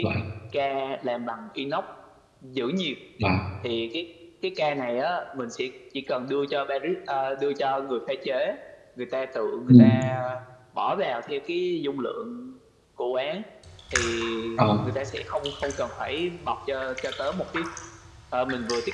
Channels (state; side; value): identical; both; correlation 1.00